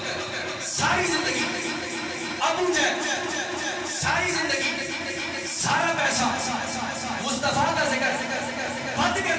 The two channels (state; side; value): identical; both; correlation 1.00